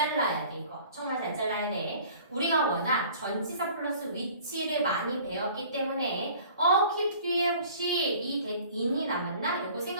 돼 이거. 정말 잘 잘라야 돼. 우리가 워낙 전치사 플러스 위치를 많이 배웠기 때문에 keep 뒤에 혹시 이 that in이 남았나? 요거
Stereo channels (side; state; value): both; inverted; correlation -0.49